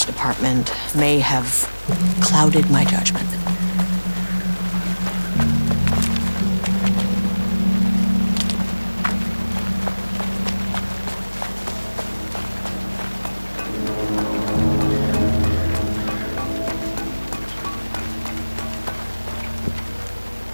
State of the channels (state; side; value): inverted; both; correlation -1.00